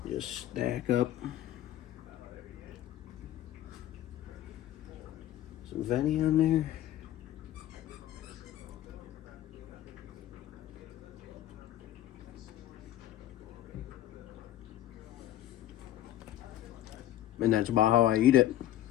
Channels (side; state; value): right; quieter; 13.2 dB